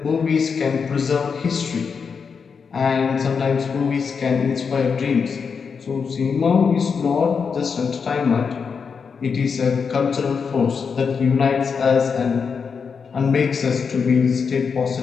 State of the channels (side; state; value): right; quieter; 5.8 dB